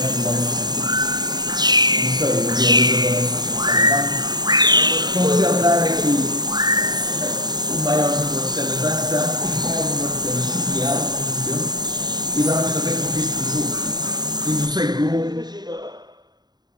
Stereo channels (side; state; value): left; late; 0.20 ms